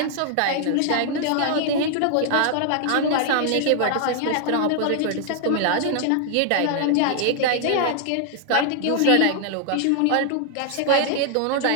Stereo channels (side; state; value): both; different; correlation 0.00